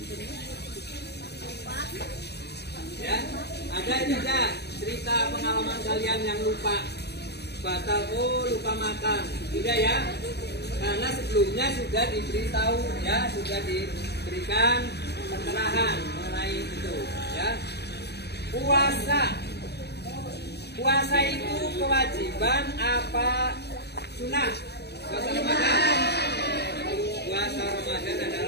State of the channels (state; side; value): late; right; 0.48 ms